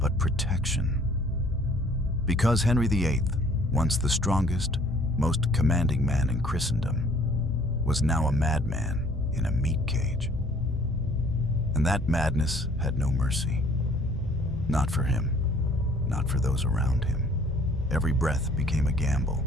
protection. Because Henry VIII, once the strongest, most commanding man in Christendom, was now a madman in a meat cage. And that madness had no mercy. Not for him, not for those around him. Every breath became a gamble,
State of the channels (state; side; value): normal; both; correlation 0.57